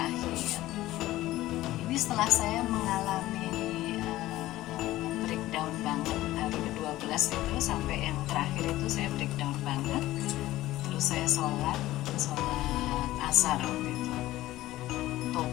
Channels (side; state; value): right; quieter; 16.0 dB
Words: Ini setelah saya mengalami breakdown banget hari ke-12 itu sampai yang terakhir itu saya breakdown banget. Terus saya sholat asar waktu itu.